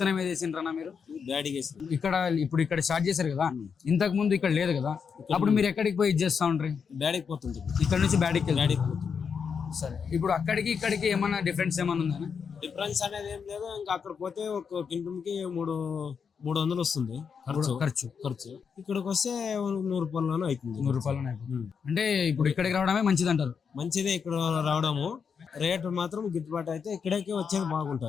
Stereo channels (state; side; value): quieter; right; 6.3 dB